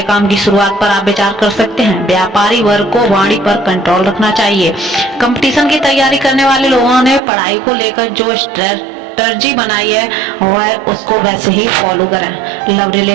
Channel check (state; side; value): drops out; left; at 7.2 s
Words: काम की शुरुआत पर आप विचार कर सकते हैं। व्यापारी वर्ग को वाणी पर कंट्रोल रखना चाहिए। कंपटीशन की तैयारी करने वाले लोगों ने पढ़ाई को लेकर जो स्ट्रेटजी बनाई है वह उसको वैसे ही फॉलो करें। लव